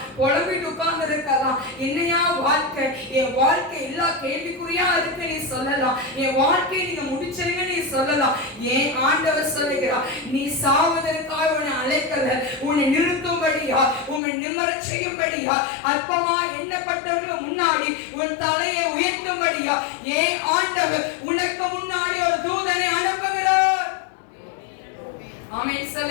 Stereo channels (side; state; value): right; drops out; at 14.2 s